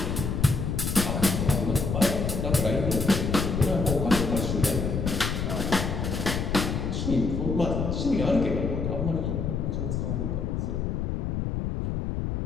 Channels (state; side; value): noise; left; rumble, 1 dB below the sound